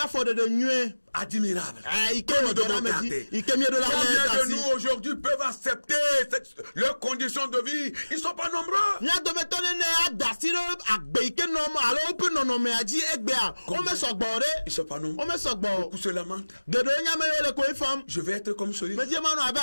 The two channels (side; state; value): both; inverted; correlation -1.00